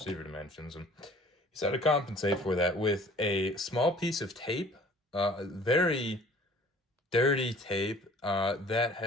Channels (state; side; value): normal; both; correlation 0.51